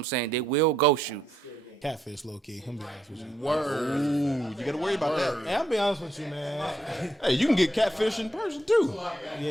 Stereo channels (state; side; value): normal; both; correlation 0.77